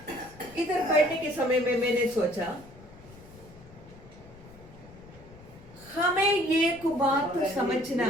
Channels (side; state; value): left; noise; rumble, 21 dB below the sound